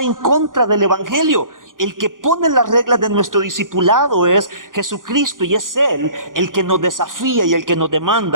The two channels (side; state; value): left; late; 0.89 ms